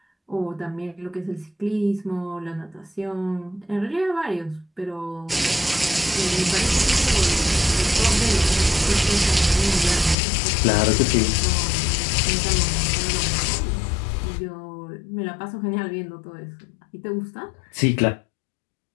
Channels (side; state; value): right; drops out; at 10.2 s